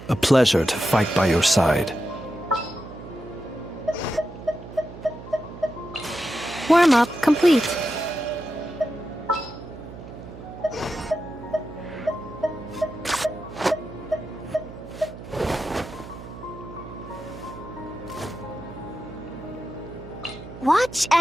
A pleasure to fight by your side. Warm-up complete. Watch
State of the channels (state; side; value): noise; right; hum, 13 dB below the sound